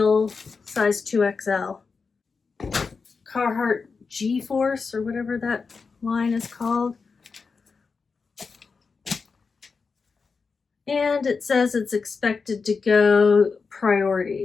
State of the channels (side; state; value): right; quieter; 4.9 dB